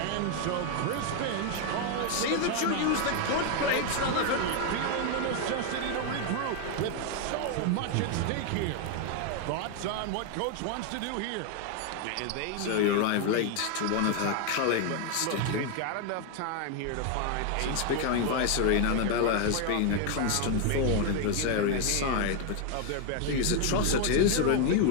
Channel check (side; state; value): both; different; correlation 0.01